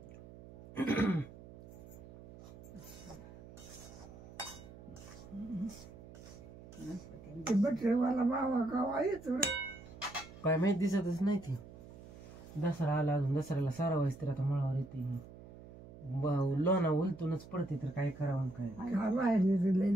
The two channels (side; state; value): right; noise; hum, 17 dB below the sound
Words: बटरेवाला बाबा गावा येतो काय माहित दिसतच नाही ती. दसरा आला अजून दसऱ्याला सारा व्हायच तर आता मळावर येते लोणा उलटूनच पडते तर काय करावं काय बाहेर